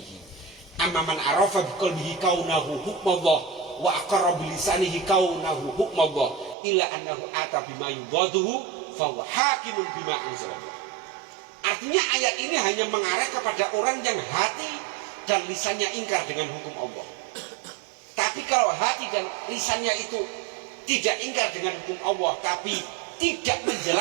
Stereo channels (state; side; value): drops out; left; at 6.6 s